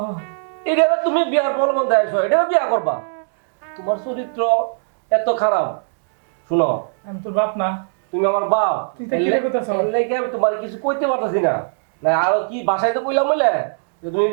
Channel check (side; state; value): left; silent; 66 dB below the other